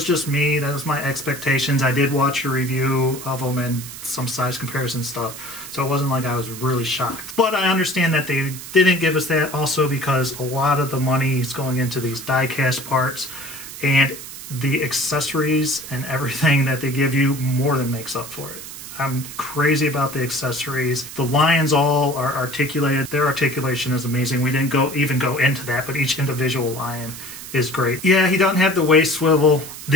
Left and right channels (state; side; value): noise; right; hiss, 12 dB below the sound